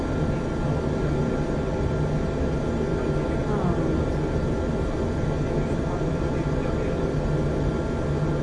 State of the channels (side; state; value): both; identical; correlation 1.00